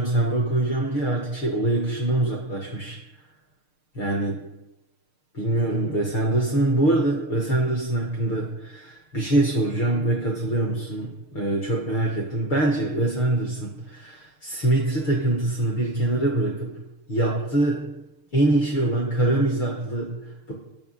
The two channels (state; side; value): late; right; 6.6 ms